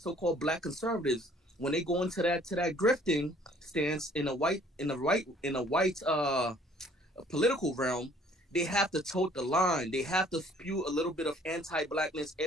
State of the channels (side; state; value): both; normal; correlation 0.57